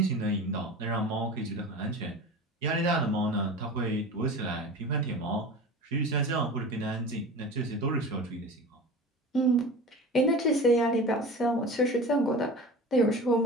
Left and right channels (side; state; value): both; normal; correlation 0.34